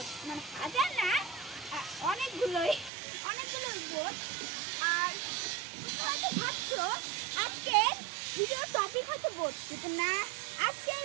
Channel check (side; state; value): left; drops out; at 2.9 s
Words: মানে হাজার না, অনেকগুলোই বোট। আর তোমরা হয়তো ভাবছো আজকের ভিডিওর টপিক হচ্ছে বোট, কিন্তু না, আজকের